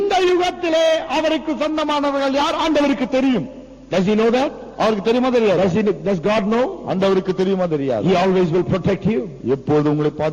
யுகத்திலே அவருக்கு சொந்தமானவர்கள் யார் ஆண்டவருக்கு தெரியும். Does He know that? அவருக்கு தெரியுமா தெரியாது? Does God know? ஆண்டவருக்கு தெரியுமா தெரியாது? He always will protect you. எப்போது உங்களை His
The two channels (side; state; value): both; identical; correlation 1.00